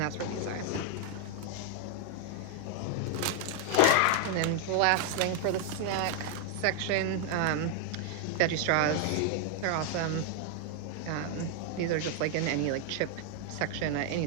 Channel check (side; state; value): both; different; correlation 0.00